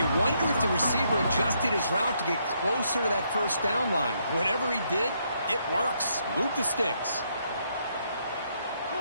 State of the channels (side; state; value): both; inverted; correlation -0.74